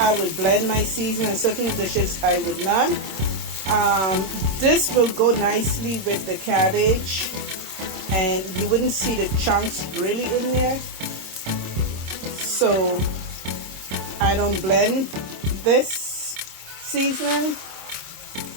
would blend my seasoning, and certain dishes I would not. This will go nicely with the cabbage, and you wouldn't see the chunks really in there, so I don't blend this seasoning.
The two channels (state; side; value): late; left; 26 ms